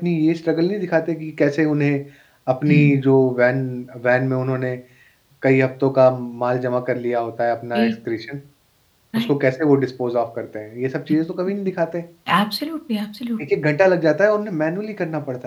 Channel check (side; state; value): both; identical; correlation 1.00